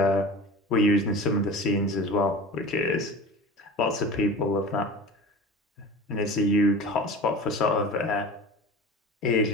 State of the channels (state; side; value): normal; both; correlation 0.35